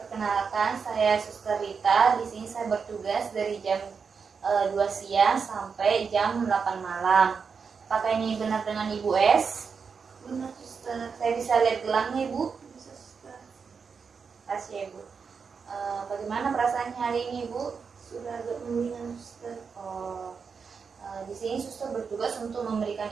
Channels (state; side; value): quieter; left; 5.7 dB